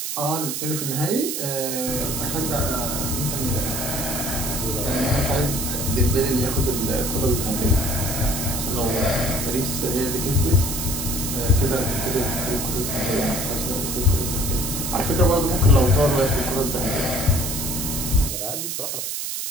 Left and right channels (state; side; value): noise; right; hiss, 3 dB below the sound